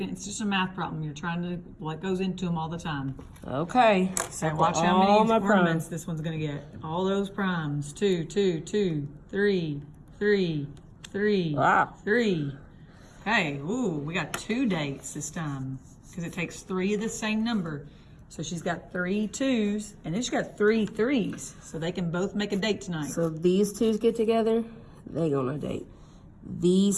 It's just a math problem. You're trying to, what goes into them all the time. Okay. So watch how all many my ornaments primes. this one's gonna get. All those primes. 2, 2, 2, 3, 3, 3, Wow. 3. Okay, ooh, we got 2 dates this time because it takes 3 of the same number. So she's got 3 2s and then she's got 3 3s. So they can both make a date tonight. So these 2s get together, they go on a date.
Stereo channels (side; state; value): both; identical; correlation 1.00